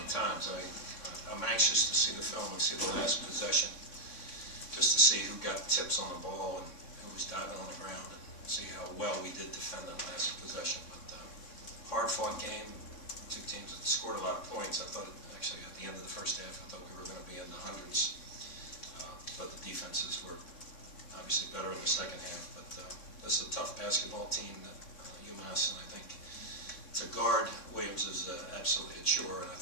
times. I'm anxious to see the film and see the last possession, just to see who got tips on the ball and who was diving on the ground, and see how well we did defend that last possession. But hard-fought game, two teams that scored a lot of points. I thought, actually, at the end of the first half, I thought we were going to be in the hundreds. But the defenses were obviously better in the second half. But this is a tough basketball team, UMass, and I think to guard Williams is absolutely a chore, and I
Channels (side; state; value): right; late; 3.6 ms